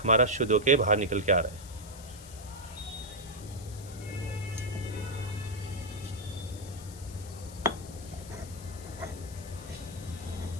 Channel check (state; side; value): noise; left; hiss, 16 dB below the sound